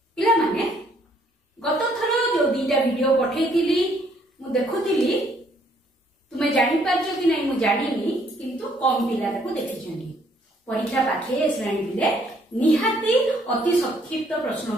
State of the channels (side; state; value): both; normal; correlation 0.66